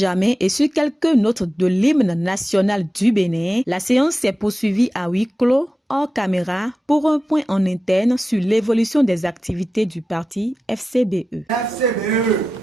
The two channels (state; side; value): normal; both; correlation 0.93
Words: et sur quelques notes de l'hymne national du Bénin, la séance s'est poursuivie à huis clos, hors caméra, pour un point en interne sur l'évolution des activités du parti FCBE. FCBE,